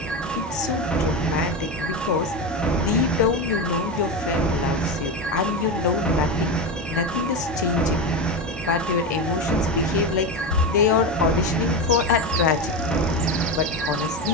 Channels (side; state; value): both; normal; correlation 0.17